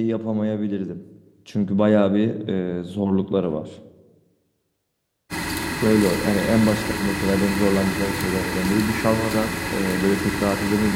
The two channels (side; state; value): both; identical; correlation 1.00